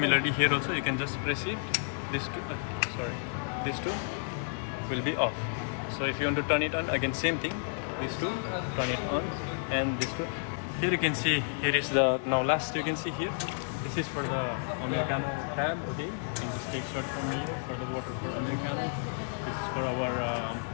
here also you can just press it, these two these two will be off. So if you want to turn it on, again same thing, these two, turn it on, and these two. Here you can see, here is the, now last you can see here, This is for the Americano tab, okay? You can just take shot from here for the water for Americano. This is for our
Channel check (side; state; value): right; silent; 56 dB below the other